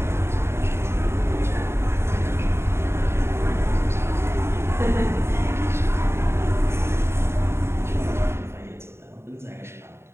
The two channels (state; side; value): late; left; 0.12 ms